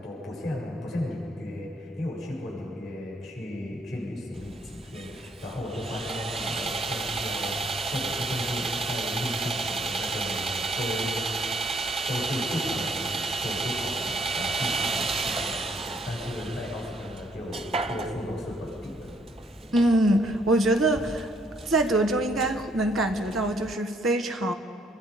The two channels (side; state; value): both; normal; correlation 0.68